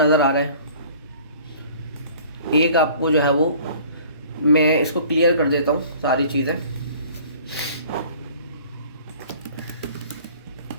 आ रहा है। एक आपको जो है वो, मैं इसको क्लियर कर देता हूँ सारी चीज़ें।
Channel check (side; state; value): both; inverted; correlation -0.50